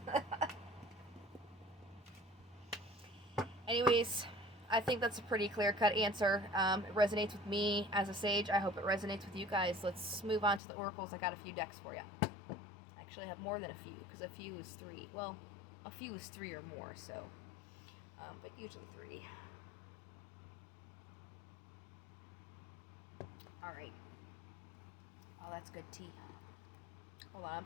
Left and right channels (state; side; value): drops out; right; at 10.6 s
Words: Anyways, I think that's a pretty clear-cut answer. It resonates with me as a sage. I hope it resonates with you guys. Let's move on to the oracles. I got a few decks for you. Actually, I have more than a few, because a few is 3. Well, a few is 3 or more, so. But usually 3. Alright. Oh, that's good tea. Hold on, I'm